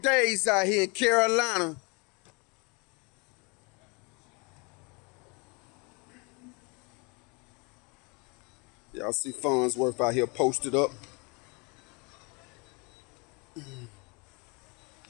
out here in Carolina. Y'all see Farnsworth out here posted up.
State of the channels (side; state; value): right; quieter; 30.1 dB